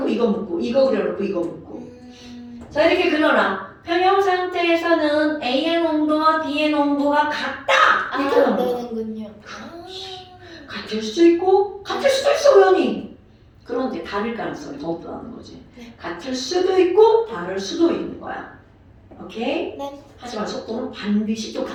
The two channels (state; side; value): identical; both; correlation 1.00